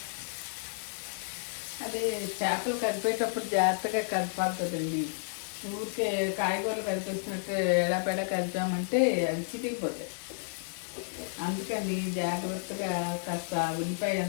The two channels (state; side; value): silent; right; 56 dB below the other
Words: అదే చేపలు కలిపేటప్పుడు జాగ్రత్తగా కలపాలి కదండి. ఊరికే కాయగూరలు కలిపేసినట్టు ఎడాపెడా కలిపామంటే అవి చితికిపోతాయి. అందుకని జాగ్రత్తగా కాస్త ఉల్లిపాయ